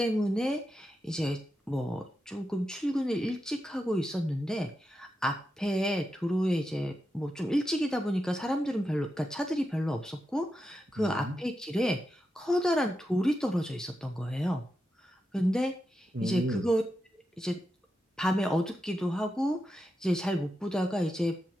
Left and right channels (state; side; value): normal; both; correlation 0.88